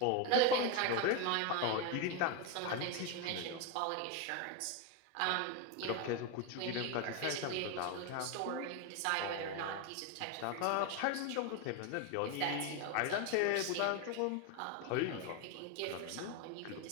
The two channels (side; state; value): both; different; correlation 0.02